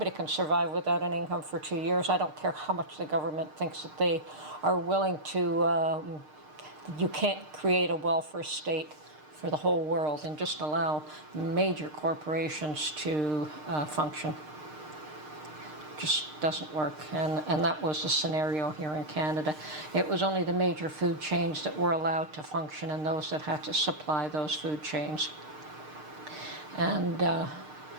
can survive without an income for 2 years. I don't care how much the government thinks that they are willing to, you can't create a welfare state for the whole world and just allow major corporations to function. Just doesn't work, and that was the scenario here in Canada. It was only the major food chains that were allowed to function and those that had to supply those food chains. And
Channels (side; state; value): left; late; 6.6 ms